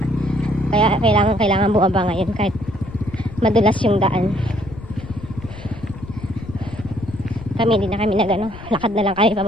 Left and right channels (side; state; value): left; noise; rumble, 14 dB below the sound